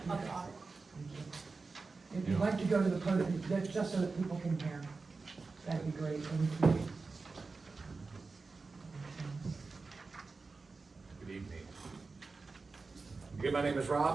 audit. If you'd like to go to the podium, that's just so that people can hear. That'd be great, thank you. Good evening. Again, my name is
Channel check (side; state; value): left; quieter; 4.1 dB